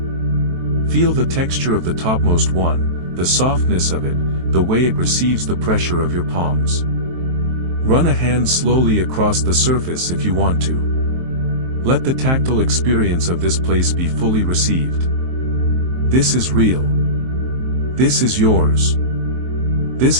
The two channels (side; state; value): left; late; 23 ms